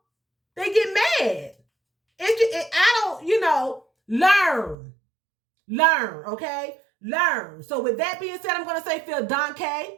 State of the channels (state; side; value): drops out; left; at 4.8 s